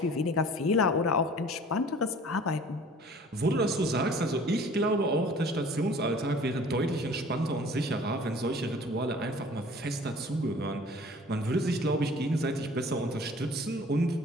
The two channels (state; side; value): normal; both; correlation 0.49